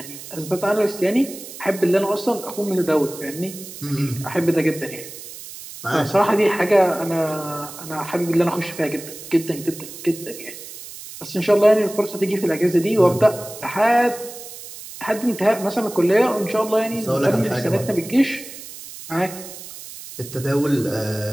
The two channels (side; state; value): right; noise; hiss, 14 dB below the sound